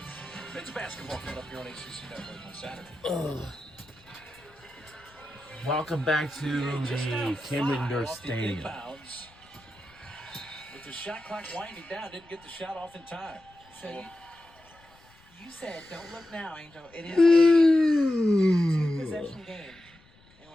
Men's basketball coming up here on ACC Network on Saturday. Welcome back to the Cameron Indoor Stadium. With the shot clock winding down, didn't get the shot off in time. So you said, don't look now, Angel. It is a two-possession game. And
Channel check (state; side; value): noise; left; rumble, 28 dB below the sound